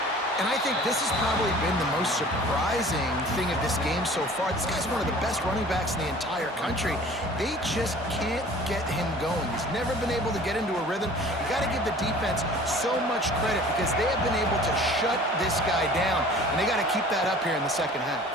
And I think this has probably been the most surprising thing of this game so far. This guy's one of the best running backs in the entire country. They just can't get him going. He's never been able to get into a rhythm. You got to give the defense so much credit because they have been able to shut this guy down, and they got to keep that up here in the second half.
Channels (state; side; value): normal; both; correlation 0.47